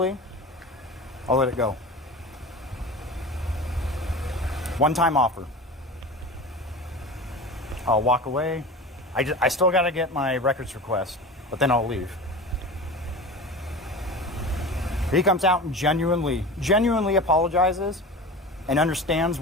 I'll let it go. One-time offer. I'll walk away. I still got to get my records request, but then I'll leave. If he comes out and genuinely apologizes and understands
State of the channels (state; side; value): normal; both; correlation 0.32